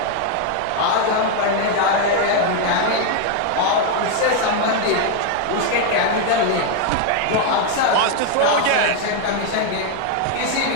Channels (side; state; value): both; different; correlation 0.01